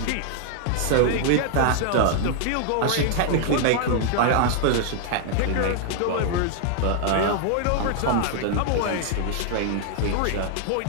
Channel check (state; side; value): different; both; correlation 0.00